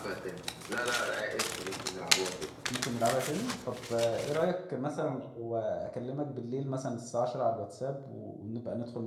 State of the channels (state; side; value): identical; both; correlation 1.00